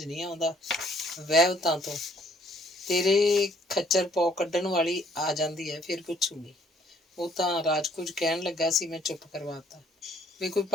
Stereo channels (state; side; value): normal; both; correlation 0.62